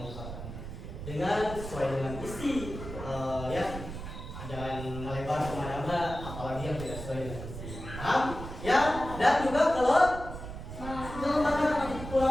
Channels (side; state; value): right; noise; rumble, 9 dB below the sound